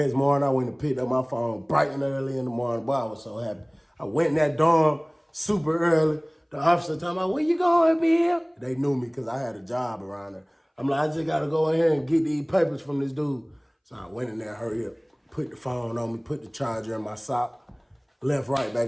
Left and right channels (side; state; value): both; identical; correlation 1.00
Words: morning. I went and picked up my phone bright and early in the morning. Boy, I was so happy. I went in that dorm super early. The officer told me, where you going, Bill? They knew me because I had a job around there. I'm like, I just got to go in here and get these papers from this dude. So I went in there, hurry up, put the phone on me, put the charger in my sock, left right